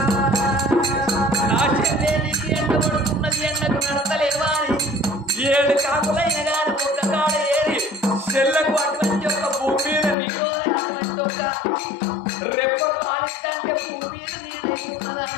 నా చెల్లెలికి ఎండ పడుతున్నది ఎండకు నడతలేవా అని 7 కాకులైన గాని ఒక్క కాడ ఏరి చెల్లకు అటువంటి ఒక భూమి మీద నీరు అటువంటి ఒక రెప్పలు ఆలిస్తంటే భూమి మీద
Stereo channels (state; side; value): drops out; right; at 10.2 s